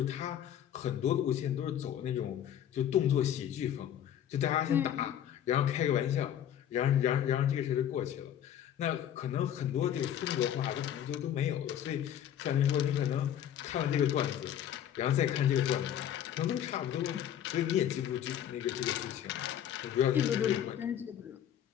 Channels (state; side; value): quieter; right; 10.3 dB